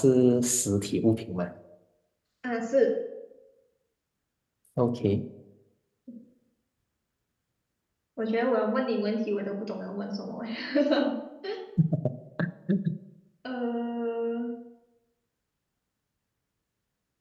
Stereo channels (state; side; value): identical; both; correlation 1.00